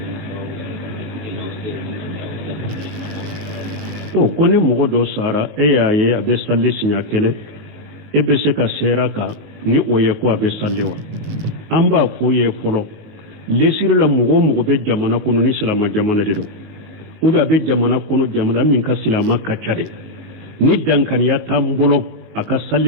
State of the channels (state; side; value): late; left; 19 ms